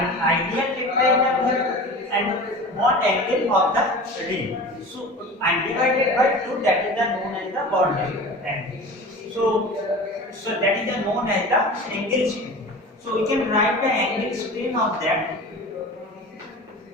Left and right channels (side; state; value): both; normal; correlation 0.35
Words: ideal tetrahedral and bond angle of the ring. So and divided by 2, that is the known as the bond angle. So that is the known as the angle strain. So we can write the angle strain of that